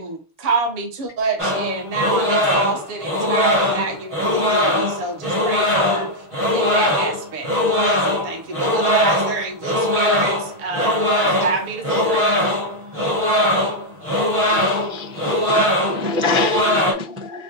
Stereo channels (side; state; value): left; late; 6.3 ms